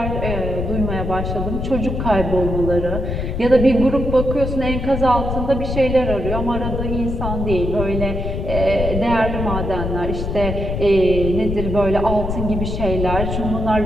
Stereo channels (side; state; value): left; noise; rumble, 3 dB below the sound